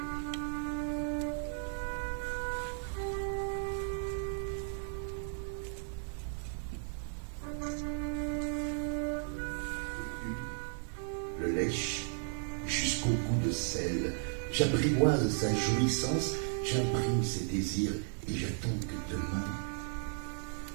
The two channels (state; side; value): silent; left; 54 dB below the other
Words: Jusqu'au goût de sel, j'apprivoise sa jouissance, j'imprime ses désirs et j'attends que demain